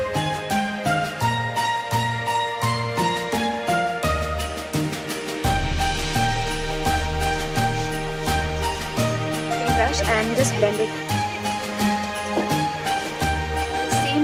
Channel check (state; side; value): identical; both; correlation 1.00